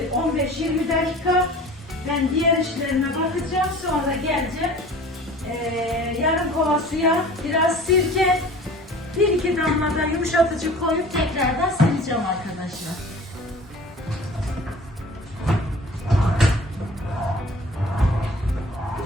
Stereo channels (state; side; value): normal; both; correlation 0.44